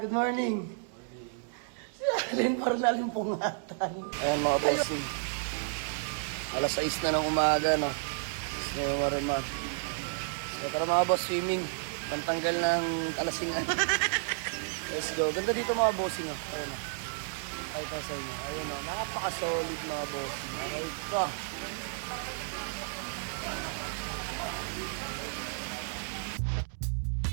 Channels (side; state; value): left; silent; digital silence